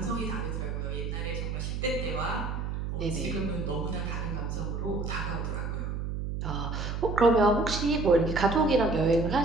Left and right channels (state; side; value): noise; right; hum, 3 dB below the sound